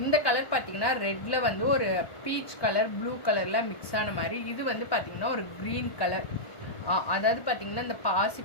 இந்த கலர் பார்த்தீங்கன்னா ரெட்டில் வந்து ஒரு பீச் கலர் ப்ளூ கலரில் மிக்ஸ் ஆன மாதிரி. இது வந்து பார்த்தீங்கன்னா ஒரு க்ரீன் கலர், அதாவது பார்த்தீங்கன்னா இந்த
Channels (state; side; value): late; right; 1.1 ms